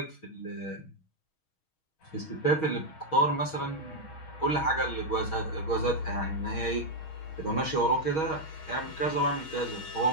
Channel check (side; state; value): right; late; 6.3 ms